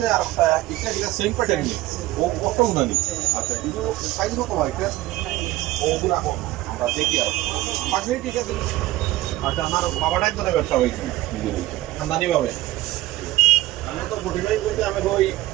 আর একটা এটা সেম প্যাটার্ন নেই ও কত উনানি আচ্ছা এটা সাইজ কত হয় এটা ওগুলো এখন আমরা দেখি আর পাখি ঠিক আছে আচ্ছা আমার বাবাটাই তো ব্যবসা হয়েছে খানদানি ভাবে আমি তো মোটিভাই বলতে আমি ওই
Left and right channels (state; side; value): quieter; left; 16.9 dB